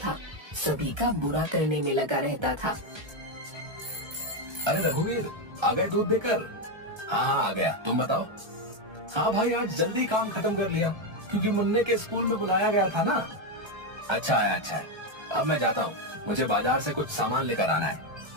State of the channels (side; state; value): left; late; 1.3 ms